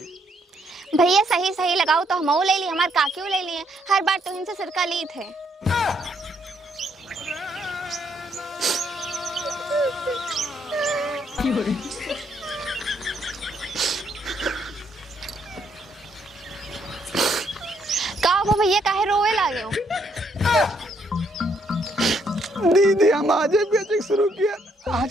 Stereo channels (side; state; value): both; normal; correlation 0.72